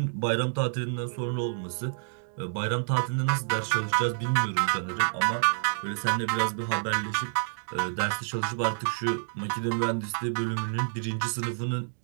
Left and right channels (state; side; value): silent; left; digital silence